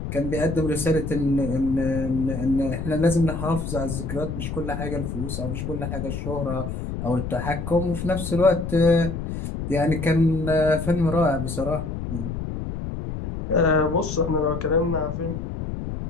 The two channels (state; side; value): noise; left; rumble, 5 dB below the sound